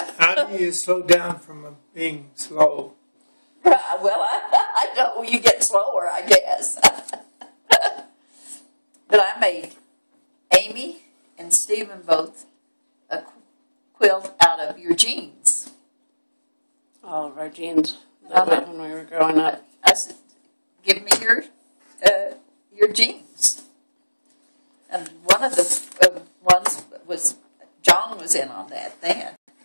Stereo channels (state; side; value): inverted; both; correlation -1.00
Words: How do you slow down from being slow? Well, I know you get slower, I guess. But I made Amy and Stephen both a quilt out of your jeans. All of our jeans when we were growing up. I said, give me your jeans. And one of the ones was, John was in on that then,